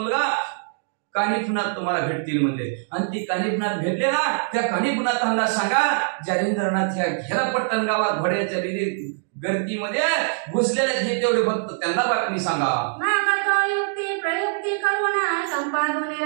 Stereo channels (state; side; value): silent; left; digital silence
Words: कानिफनाथ तुम्हाला भेटतील म्हणजे. आणि ती कानिफनाथ भेटले ना त्या कानिफनाथांना सांगा जालिंद्रनाथ ह्या घेरापट्टण गावात घोड्याच्या गर्दीमध्ये घुसलेले हे तेवढे भक्त त्यांना बातमी सांगा.